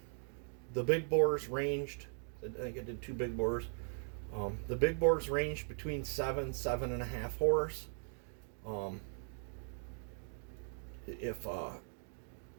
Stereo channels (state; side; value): silent; left; 52 dB below the other